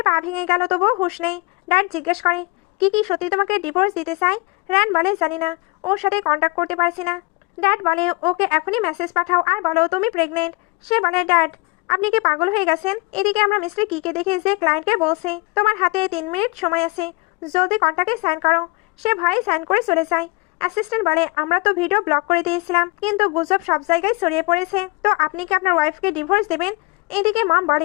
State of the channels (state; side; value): quieter; right; 27.0 dB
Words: পা ভেঙে গেল, তবুও হুঁশ নেই। ড্যাড জিজ্ঞেস করে, কি সত্যি তোমাকে ডিভোর্স দিতে চাই? র্যান বলে, জানি না, ওর সাথে কন্ট্যাক্ট করতে পারছি না। ড্যাড বলে, ওকে এখনই মেসেজ পাঠাও আর বলো তুমি প্রেগনেন্ট। সে বলে, ড্যাড আপনি কি পাগল হয়ে গেছেন? এদিকে আমরা মিস্টার কিকে দেখে যে ক্লায়েন্টকে বলছে তোমার হাতে 3 মিনিট সময় আছে, জলদি কন্ট্যাক্টে সাইন করো। সে ভয়ে সাইন করে চলে যায়। অ্যাসিস্ট্যান্ট বলে, আমরা তো ভিডিও ব্লক করে দিয়েছিলাম, কিন্তু গুজব সব জায়গায় ছড়িয়ে পড়েছে, তো আপনি কি আপনার ওয়াইফকে ডিভোর্স দেবেন? এদিকে মম